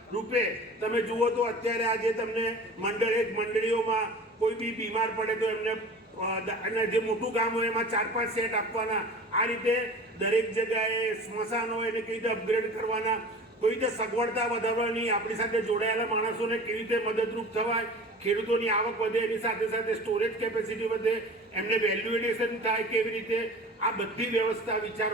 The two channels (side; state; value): both; normal; correlation 0.39